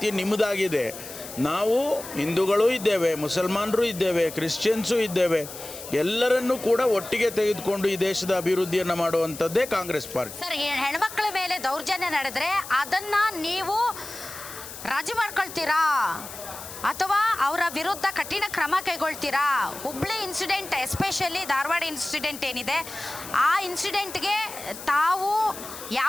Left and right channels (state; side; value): noise; left; hiss, 12 dB below the sound